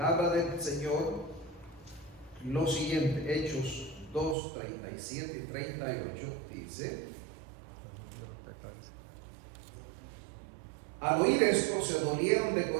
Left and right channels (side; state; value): left; drops out; at 4.4 s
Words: del Señor lo siguiente. Hechos 2, 37 y 38 dice: al oír esto se dolieron de